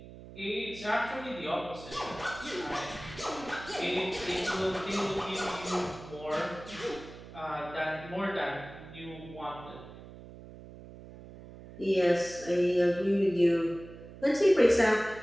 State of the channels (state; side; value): noise; right; hum, 16 dB below the sound